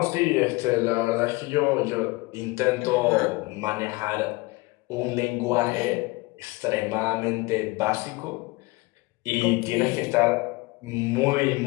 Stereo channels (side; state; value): right; quieter; 23.7 dB